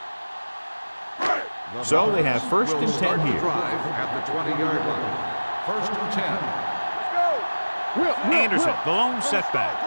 So they have first and 10 here. At the 20-yard line. First and 10. Anderson, the lone setback.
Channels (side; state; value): both; inverted; correlation -1.00